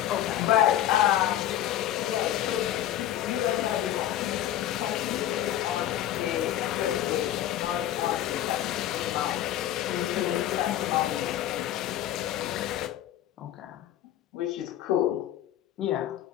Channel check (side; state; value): right; quieter; 12.3 dB